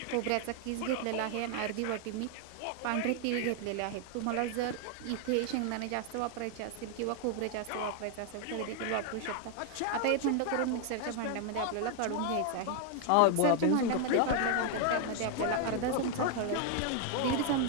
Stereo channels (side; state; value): both; different; correlation 0.00